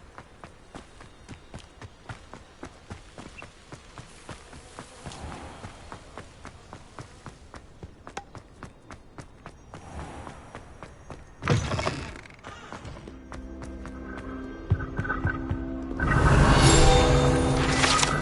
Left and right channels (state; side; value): identical; both; correlation 1.00